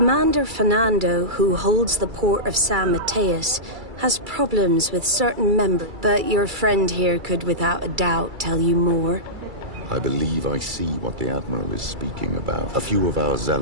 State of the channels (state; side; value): late; left; 2.3 ms